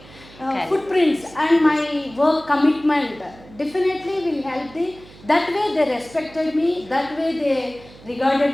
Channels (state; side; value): noise; right; hum, 22 dB below the sound